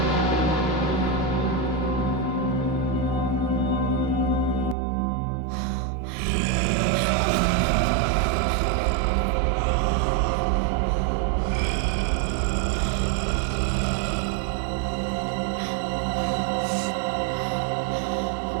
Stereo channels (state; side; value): drops out; left; at 4.8 s